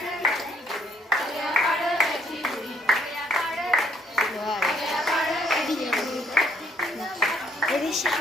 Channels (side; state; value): both; normal; correlation 0.65